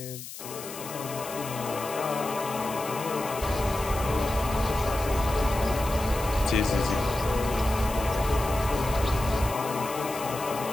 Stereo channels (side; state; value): left; noise; hiss, 12 dB below the sound